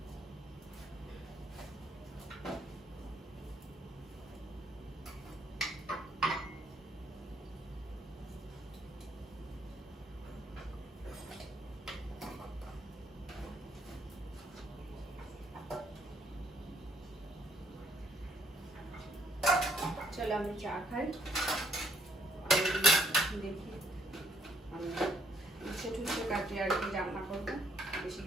চলো আমি চা খাই, দেখি আমি উচ্ছে টুচ্ছে কাটি আর কি রান্না করবো, বেশি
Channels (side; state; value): both; normal; correlation 0.68